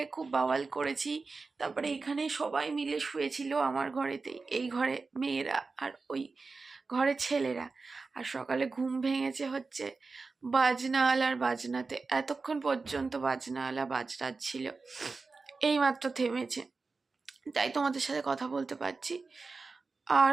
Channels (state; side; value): quieter; left; 4.1 dB